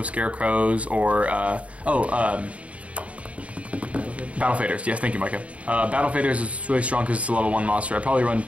Scarecrows or Battle Faders. Yes, thank you, Micah. Battle Faders is really strong because it's a level 1 monster. I'd probably run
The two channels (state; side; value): late; left; 0.065 ms